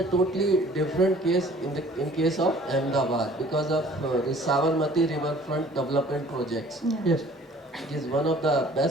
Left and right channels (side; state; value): both; normal; correlation 0.52